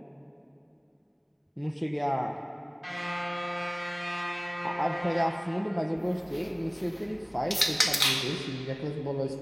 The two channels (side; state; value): both; identical; correlation 1.00